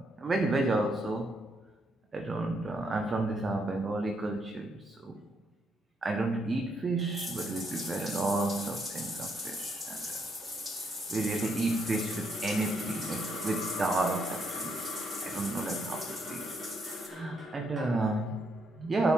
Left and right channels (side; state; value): both; normal; correlation 0.76